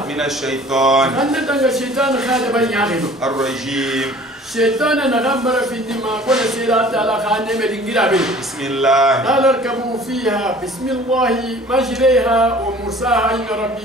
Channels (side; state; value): both; normal; correlation 0.48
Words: من الشيطان kan tangar shaitan khada ban yaqido الرجيم shaitan na gambara fi dima ko na sira taala khane me dingira be بسم الله قال اركبوا فيها بسم الله مجريها ومرساها إن ربي